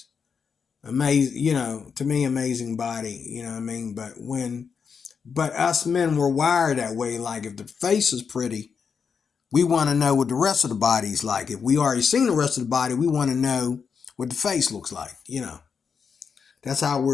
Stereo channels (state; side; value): quieter; right; 6.1 dB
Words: Amazing, to me, amazing body, you know what I mean? But us men were wired that way. Like, if the face is pretty, we want to know what the rest of the body's like. If we already seen the rest of the body, we want to know what the face looks like. That's how